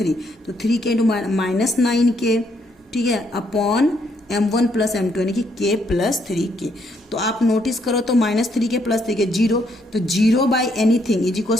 तो 3k इंटू -9k, ठीक है, अपॉन m1 प्लस m2 यानी कि k प्लस 3k। तो आप नोटिस करो तो -3k प्लस 3k 0, तो 0 by anything is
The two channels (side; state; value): both; normal; correlation 0.72